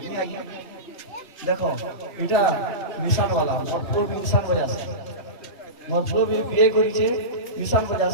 छी आज्ञा देखो इटा निशान वाला मरपुर निशान बजा আছে मरपुर भी बिए करी छे निशान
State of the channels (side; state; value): right; late; 3.3 ms